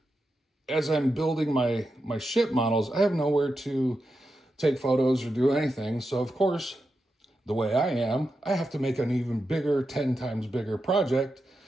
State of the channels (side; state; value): both; normal; correlation 0.88